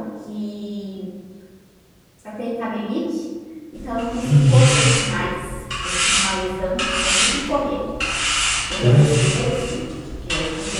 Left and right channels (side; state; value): both; identical; correlation 1.00